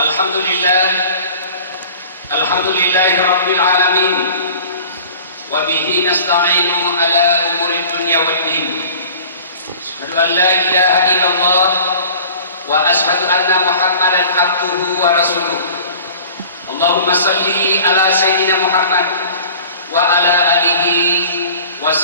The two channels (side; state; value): both; inverted; correlation -0.45